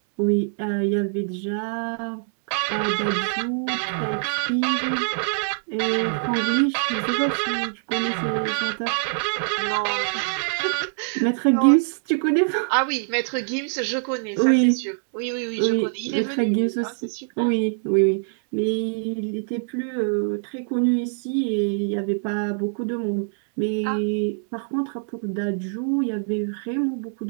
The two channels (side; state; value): left; silent; digital silence